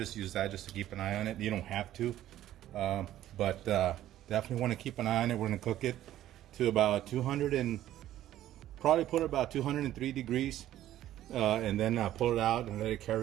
use that just to keep an eye on it. You don't have to, but definitely want to keep an eye on it. We're gonna cook it to about 200 and probably put it about 203 degrees, and then pull it out and let it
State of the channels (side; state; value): left; quieter; 13.1 dB